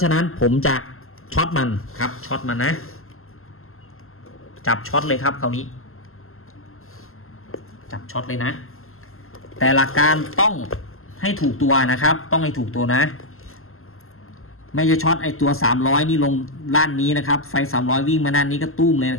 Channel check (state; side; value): late; right; 0.62 ms